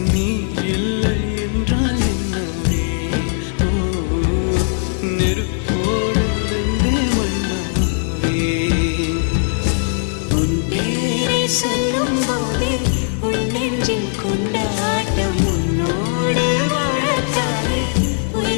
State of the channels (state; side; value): silent; right; digital silence